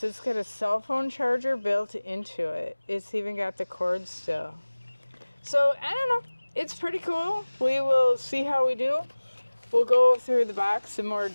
it's got a cell phone charger built into it. It's even got the cord still. So, I don't know. It's pretty cool. We will see how we do. We'll go through the box in more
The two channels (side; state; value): both; inverted; correlation -1.00